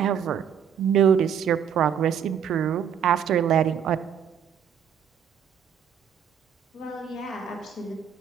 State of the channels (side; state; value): left; quieter; 8.2 dB